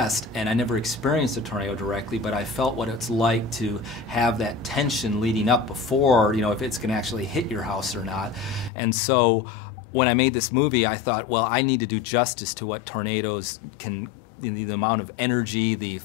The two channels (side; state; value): right; drops out; at 8.7 s